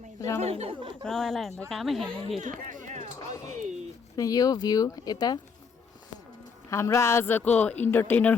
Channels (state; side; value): quieter; right; 5.6 dB